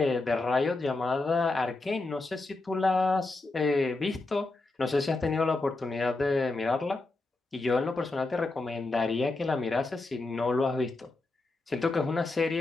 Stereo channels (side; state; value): right; quieter; 3.2 dB